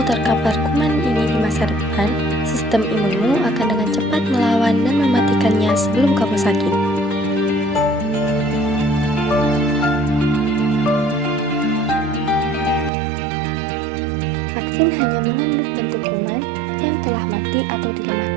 terkapar kuman ini di masa depan, sistem imunmu akan dengan cepat melawan dan mematikannya sebelum kamu sakit. Vaksin hanya mengandung bentuk kuman yang telah mati atau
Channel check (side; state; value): left; drops out; at 12.9 s